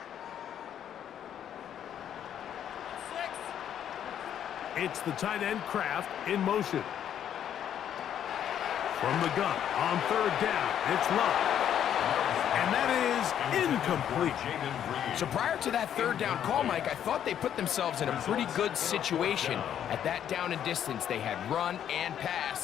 It's the tight end Kraft in motion. From the gun on 3rd down, it's Love. And that is incomplete. So prior to that 3rd down call, Mike, I thought they put themselves in a pretty good situation at that down and distance. They had run and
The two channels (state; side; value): quieter; right; 9.8 dB